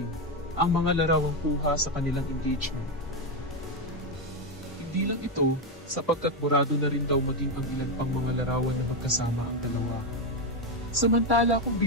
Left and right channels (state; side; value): normal; both; correlation 0.07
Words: ang mga larawang kuha sa kanilang engagement. Hindi lang ito, sapagkat burado na rin daw maging ang ilan pang mga larawan na magkasama ang dalawa. Samantala kung